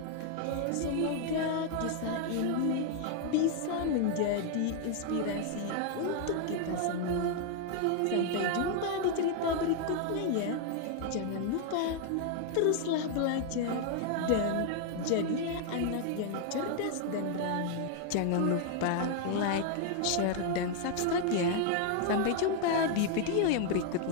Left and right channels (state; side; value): different; both; correlation 0.00